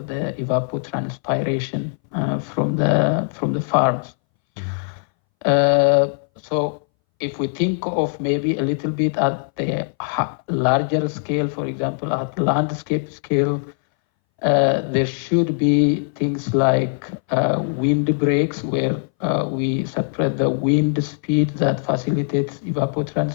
the evapotranspiration from the farms. So if we think of maybe a little bit at the larger scale, for example, at landscape scale, there should be things like wind breaks where we separate the wind speed that facilitates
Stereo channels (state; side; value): silent; right; 62 dB below the other